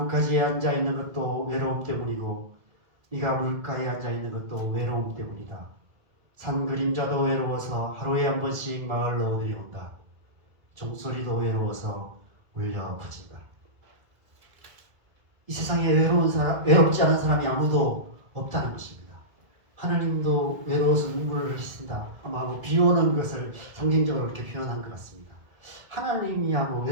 앉아있는 것도 외로움 때문이고 네가 물가에 앉아있는 것도 외로움 때문이다. 산 그림자도 외로워서 하루에 한 번씩 마을로 내려온다. 종소리도 외로워서 울려 퍼진다. 이 세상에 외롭지 않은 사람이 아무도 없다는 것입니다. 하나님도 외로워서 눈물을 흘리신다. 아마 비 오는 것을 상징적으로 이렇게 표현한 것 같습니다. 하나님이야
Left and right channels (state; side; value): late; left; 1.8 ms